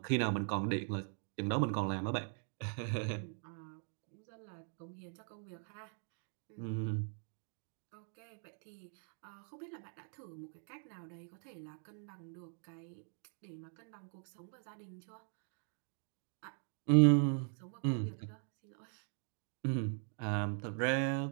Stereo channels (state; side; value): silent; left; 51 dB below the other